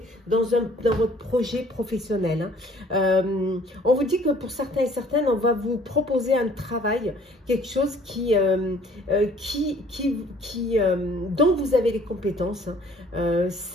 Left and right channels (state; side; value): normal; both; correlation 0.56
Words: dans votre projet professionnel. Hein. On vous dit que pour certains et certaines, on va vous proposer un travail, quelque chose dont vous avez les compétences. Hein.